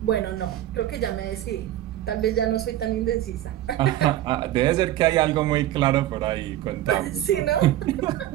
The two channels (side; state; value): left; quieter; 13.3 dB